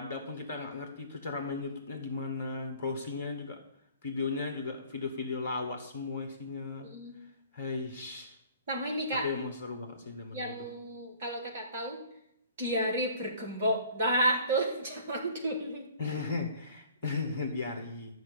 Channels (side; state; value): both; inverted; correlation -0.52